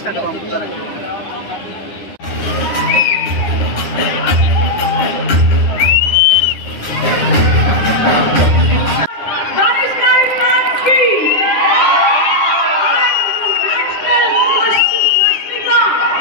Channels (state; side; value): late; right; 9.8 ms